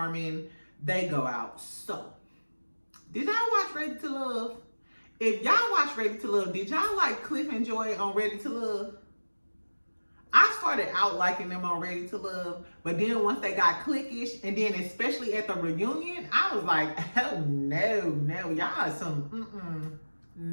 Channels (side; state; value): both; inverted; correlation -1.00